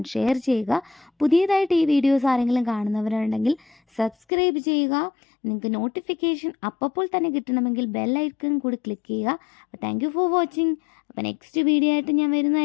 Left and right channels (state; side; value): drops out; right; at 4.2 s